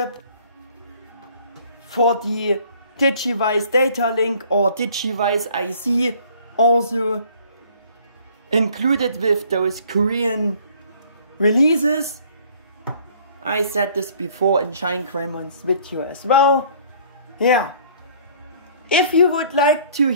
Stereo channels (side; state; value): both; inverted; correlation -0.55